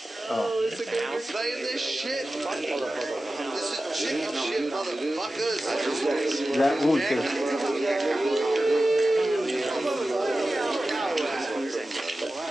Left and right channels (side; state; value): both; normal; correlation 0.94